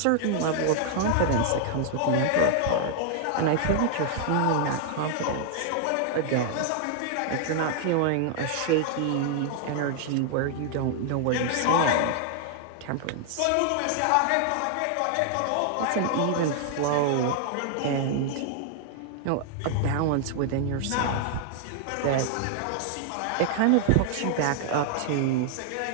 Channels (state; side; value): different; both; correlation 0.00